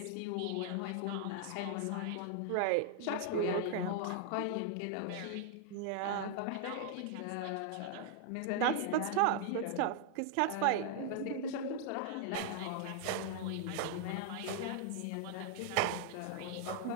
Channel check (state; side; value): different; both; correlation -0.01